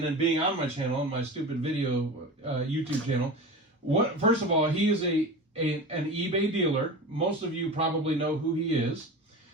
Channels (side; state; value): both; normal; correlation 0.30